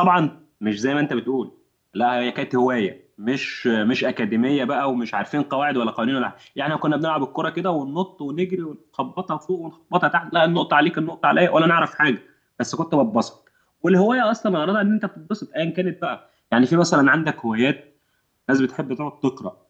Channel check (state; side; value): identical; both; correlation 1.00